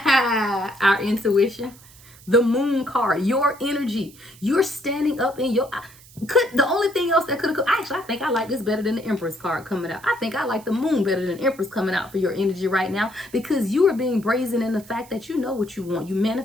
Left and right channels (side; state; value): right; noise; hiss, 23 dB below the sound